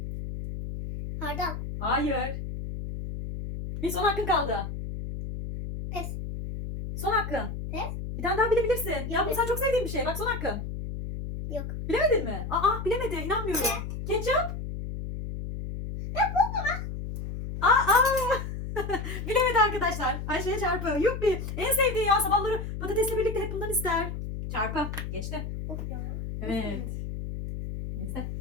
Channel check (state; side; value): noise; left; hum, 6 dB below the sound